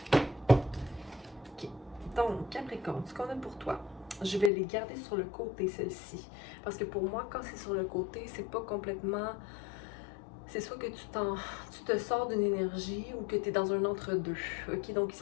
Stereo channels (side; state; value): right; drops out; at 4.5 s